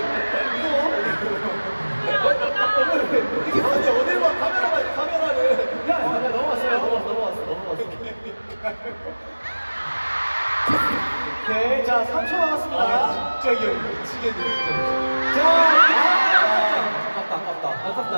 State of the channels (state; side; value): inverted; both; correlation -1.00